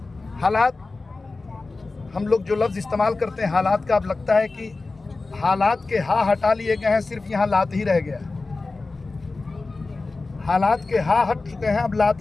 हालात, हम लोग जो लफ्ज़ इस्तेमाल करते हैं हालात का, अब लगता है कि हालात के हा हटा लिए गए हैं, सिर्फ यहाँ लात ही रह गया। हालात के हा हट चुके हैं, अब लात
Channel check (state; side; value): quieter; right; 3.6 dB